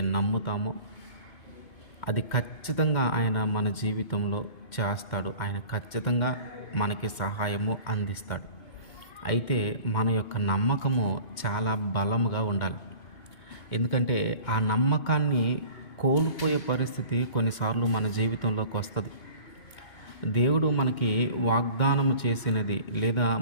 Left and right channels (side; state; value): right; late; 2.1 ms